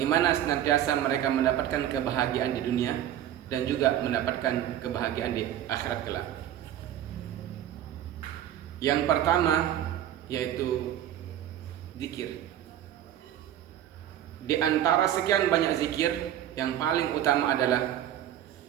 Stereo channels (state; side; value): quieter; left; 11.4 dB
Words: senantiasa mereka mendapatkan kebahagiaan di dunia dan juga mendapatkan kebahagiaan di akhirat kelak. Yang pertama yaitu zikir. Di antara sekian banyak zikir, yang paling utama adalah